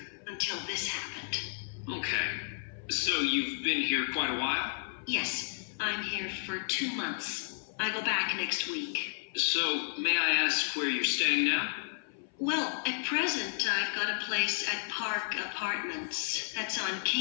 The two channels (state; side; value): silent; right; 55 dB below the other